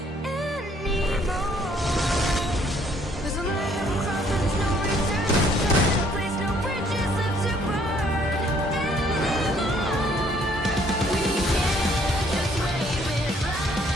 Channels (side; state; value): both; normal; correlation 0.63